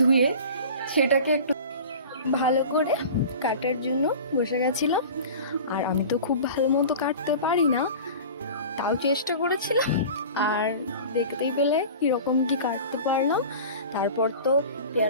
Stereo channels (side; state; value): both; inverted; correlation -0.37